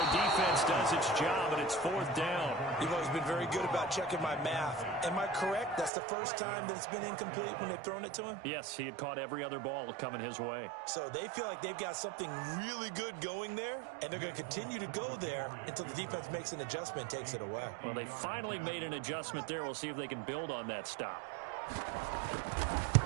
defense does its job, and it's 4th down. You've always been very good about checking my math. Am I correct? That's the first time that it's been incomplete when they've thrown it to him? Yes, he had caught every other ball coming his way. So they feel like they've got something really good going there, and they're going to continue to go there until the defense makes an adjustment and takes it away. Well, they finally made an adjustment there. We'll see if they can build on that stop.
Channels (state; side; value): drops out; left; at 5.9 s